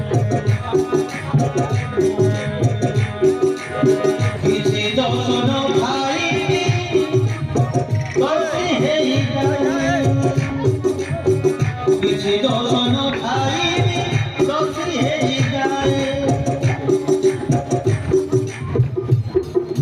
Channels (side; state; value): both; identical; correlation 1.00